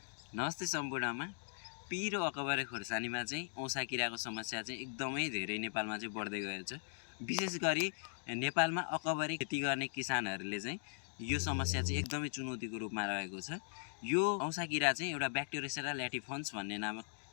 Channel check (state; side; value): silent; right; digital silence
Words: नमस्ते सम्पूर्णमा। पिरो अकबरे खोर्सानीमा चाहिँ औँसा किराको समस्या चाहिँ एकदमै धेरै नेपालमा चाहिँ बढ्दै गएको छ। विशेष गरी नेपालमा अकबरे खेती गर्ने किसानहरूले चाहिँ यो समस्या चाहिँ एकदमै चुनौतीको रूपमा रहेको छ। यो औँसा किरा चाहिँ एउटा ब्याक्टेरियोसेरा ल्याटिफन्स भन्ने नामक